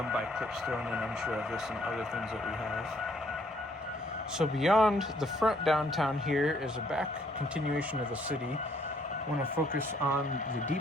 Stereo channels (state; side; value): normal; both; correlation 0.66